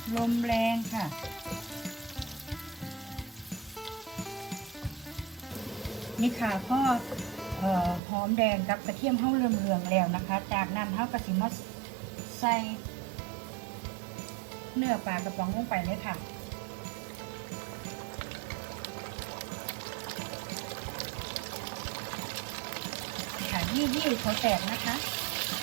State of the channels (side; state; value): left; drops out; at 8.0 s